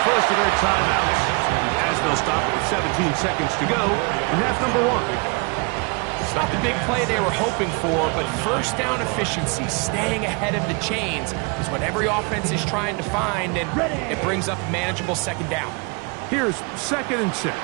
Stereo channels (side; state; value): left; quieter; 31.8 dB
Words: first of their timeouts as they'll stop it with 17 seconds to go in half number 1. It's not the big play they were hoping for, but first down efficiency, staying ahead of the chains, is what every offense is trying to find, and it brings up a manageable second down. Here's 2nd and 6.